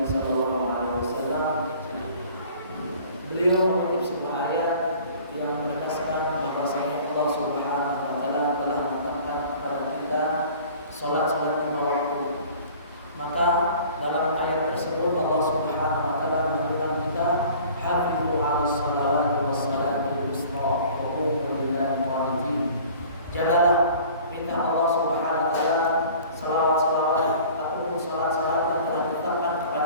sallallahu alaihi wasallam, beliau mengutip sebuah ayat yang menegaskan bahwasanya Allah Subhanahu wa taala telah menetapkan kepada kita salat lima waktu. Maka dalam ayat tersebut Allah Subhanahu wa taala menunjukkan kita hafizu 'alas salawati was salatil wusta wa qumu lillahi qanitin. Jagalah perintah Allah Subhanahu wa taala, salawat-salawat ataupun salat-salat yang telah ditetapkan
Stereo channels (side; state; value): both; inverted; correlation -0.47